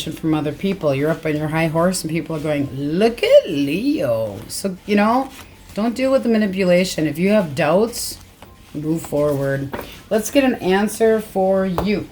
from other people. You're up on your high horse and people are going, look at Leo. So, you know, don't deal with the manipulation. If you have doubts, move forward. Let's get an answer for you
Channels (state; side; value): identical; both; correlation 1.00